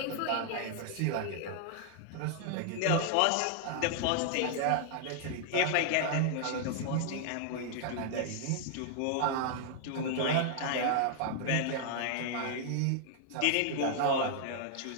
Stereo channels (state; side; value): different; both; correlation -0.01